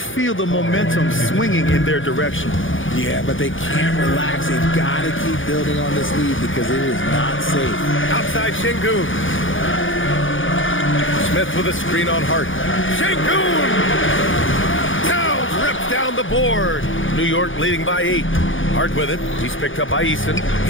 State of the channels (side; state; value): right; late; 0.57 ms